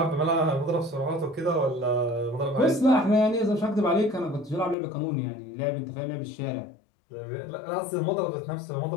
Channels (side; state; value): right; drops out; at 4.8 s